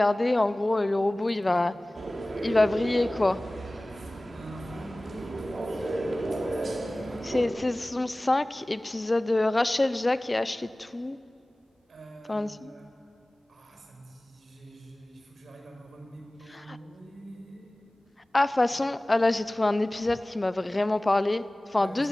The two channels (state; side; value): normal; both; correlation 0.98